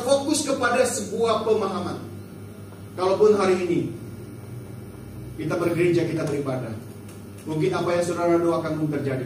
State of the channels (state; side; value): identical; both; correlation 1.00